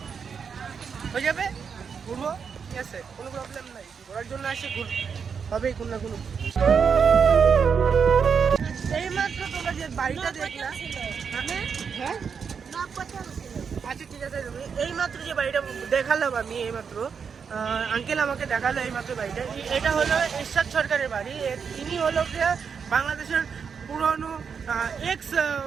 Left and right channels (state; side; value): quieter; left; 6.4 dB